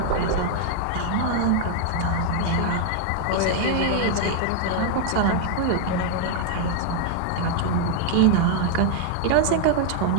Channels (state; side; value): different; both; correlation 0.00